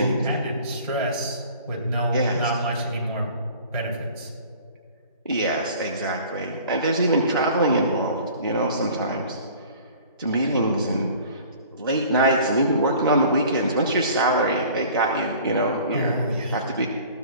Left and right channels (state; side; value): inverted; both; correlation -0.47